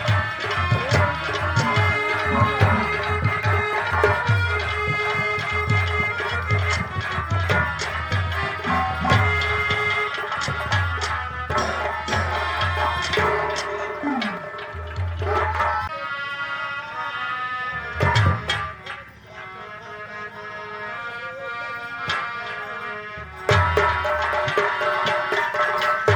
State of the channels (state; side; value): identical; both; correlation 1.00